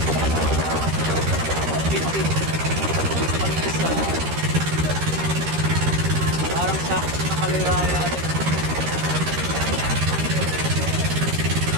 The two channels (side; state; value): left; late; 13 ms